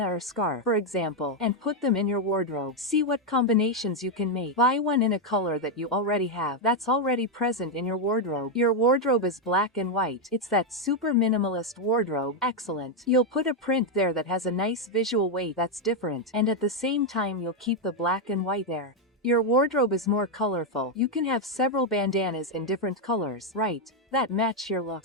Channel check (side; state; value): both; normal; correlation 0.02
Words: or scarf, for example, and put them in your wardrobe. See what combinations you can make. Buy one in a color that you already have, that's already present in your wardrobe. Your wardrobe is black and white. It's that super minimalist wardrobe. Excellent. You'll put a print there that has a nice visual weight that's different, and at the same time you'll keep the black and white there. Your wardrobe is more colorful. You can have several bandanas in different colors, right, that match your